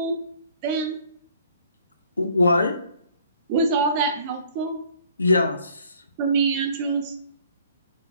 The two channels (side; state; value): both; inverted; correlation -0.57